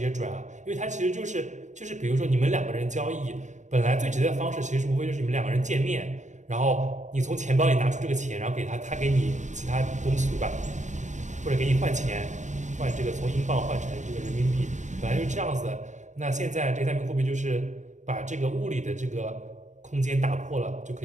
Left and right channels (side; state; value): left; late; 0.35 ms